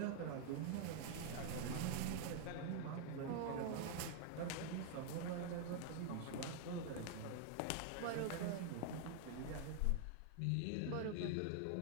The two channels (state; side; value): different; both; correlation 0.00